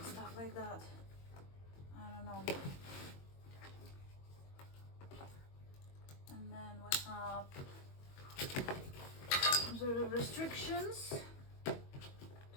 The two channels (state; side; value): late; right; 22 ms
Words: stuff like that. I don't know. some sort of restrictions